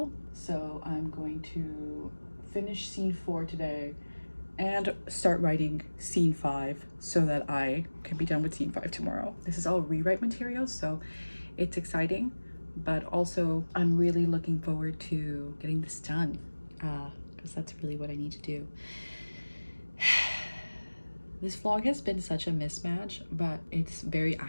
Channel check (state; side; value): inverted; both; correlation -1.00